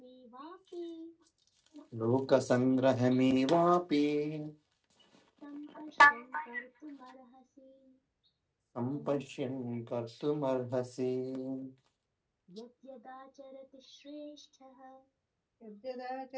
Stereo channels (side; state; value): both; identical; correlation 1.00